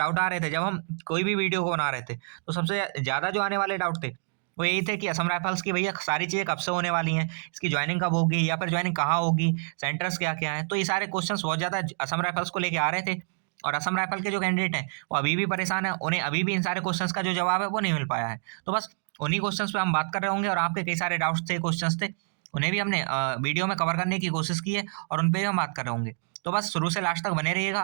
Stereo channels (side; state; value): left; silent; 60 dB below the other